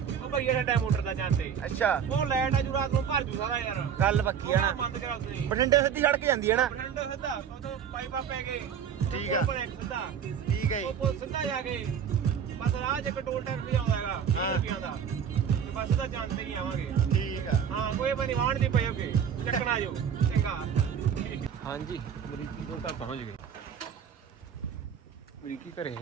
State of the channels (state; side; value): quieter; left; 7.9 dB